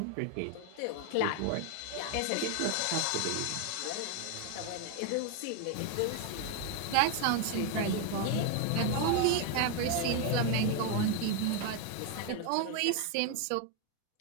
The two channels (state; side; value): different; both; correlation 0.01